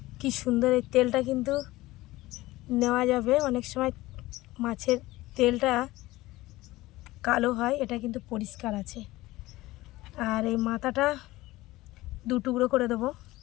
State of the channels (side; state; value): right; quieter; 18.4 dB